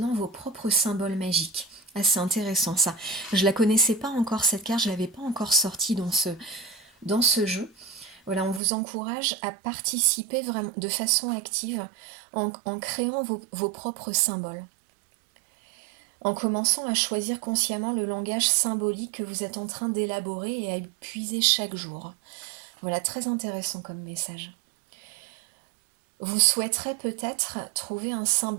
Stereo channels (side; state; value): left; drops out; at 8.6 s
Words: vos propres symboles magiques. Ah, c'est intéressant ça. Je la connaissais pas encore cette carte, je l'avais pas encore sortie dans ce jeu. Voilà, on vous encourage à participer vraiment de façon active en créant vos propres symboles. En commençant à choisir consciemment le langage symbolique que vous êtes en train d'élaborer et à y puiser chaque jour. Voilà, très intéressant comme message. Vous souhaiterez peut-être trouver un